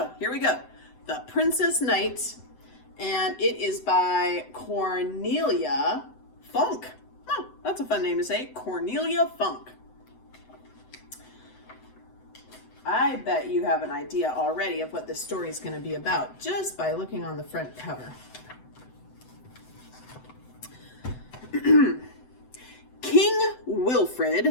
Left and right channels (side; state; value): right; late; 7.9 ms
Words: here we go. The Princess Knight, and it is by Cornelia Funk. Oh, that's a fun name to say. Cornelia Funk. I bet you have an idea already of what this story is going to be about just by looking on the front cover. King